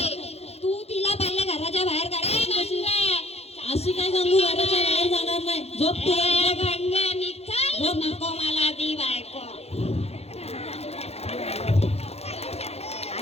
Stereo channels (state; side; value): late; right; 0.30 ms